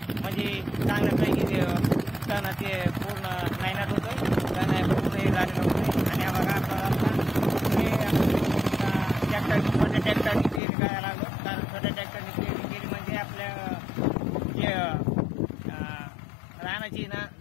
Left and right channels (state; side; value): drops out; right; at 10.6 s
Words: म्हणजे चांगल्यापैकी तणाचे पूर्ण नायनाट होतोय, तण पूर्ण झालेलं होतं. आणि हा बघा ट्रॅक्टरनी पेरणी करायला लागलो, कारण छोट्या ट्रॅक्टरनी पेरणी केली म्हणजे आपल्या जे रानाची ना